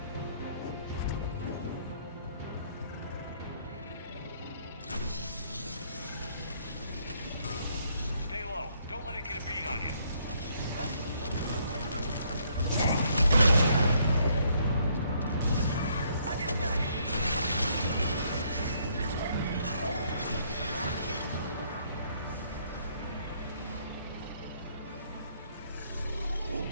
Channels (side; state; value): both; inverted; correlation -0.68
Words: Don't let it get a beat on you.